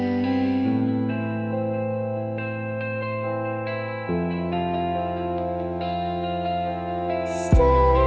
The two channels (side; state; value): both; identical; correlation 1.00